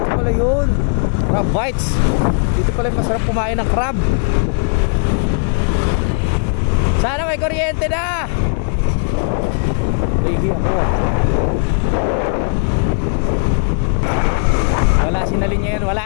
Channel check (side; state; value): right; silent; digital silence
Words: pala yun. Crab bites. Dito pala yung masarap kumain ng crab. Sana may kuryente na. Lagi ako. Wala, sinalin niya yan, wala.